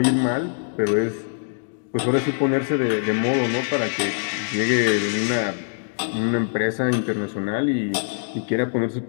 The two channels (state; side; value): silent; right; digital silence